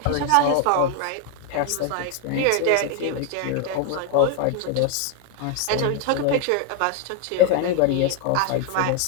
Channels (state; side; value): different; both; correlation 0.01